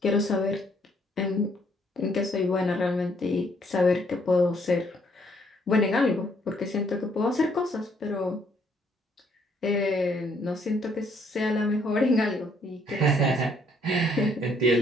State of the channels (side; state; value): both; normal; correlation 0.68